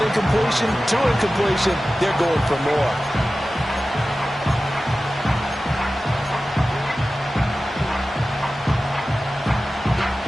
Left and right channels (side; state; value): both; normal; correlation 0.95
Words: incompletion, 2 incompletion. They're going for more.